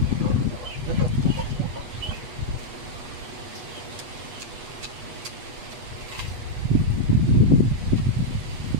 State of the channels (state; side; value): late; left; 8.1 ms